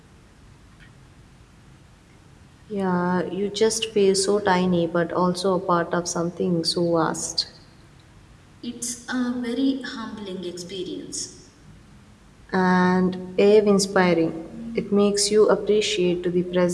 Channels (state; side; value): identical; both; correlation 1.00